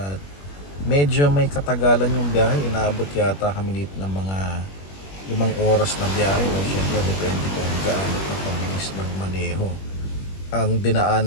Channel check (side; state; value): right; late; 21 ms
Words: medyo may katagalan yung biyahe. Inaabot yata kami dito ng mga 5 oras na biyahe. Siyempre depende kung gaano ka kabilis magmaneho. Ang